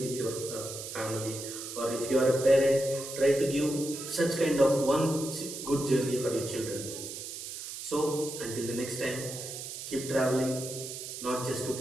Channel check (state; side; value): noise; right; hiss, 8 dB below the sound